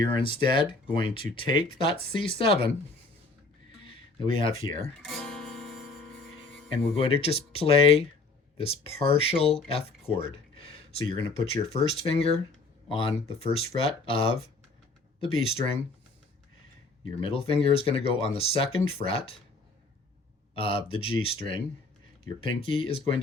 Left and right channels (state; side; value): quieter; right; 3.4 dB